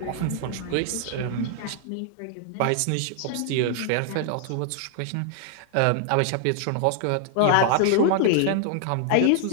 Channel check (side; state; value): both; different; correlation 0.00